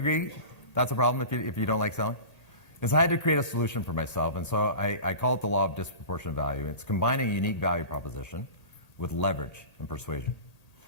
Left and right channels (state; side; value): late; right; 1.8 ms